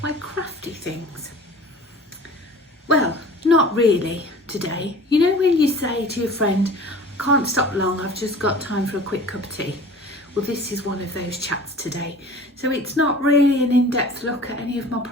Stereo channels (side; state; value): both; normal; correlation 0.43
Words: my crafty things. Well, not really today. You know when you say to your friend, I can't stop long, I've just got time for a quick cup of tea. Well, this is one of those chats today. So it's not really an in-depth look at any of my